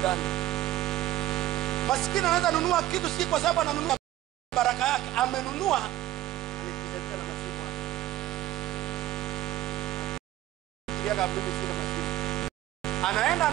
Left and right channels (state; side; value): quieter; left; 14.4 dB